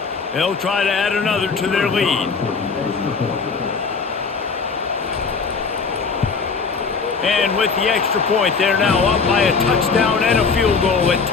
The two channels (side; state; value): right; quieter; 5.0 dB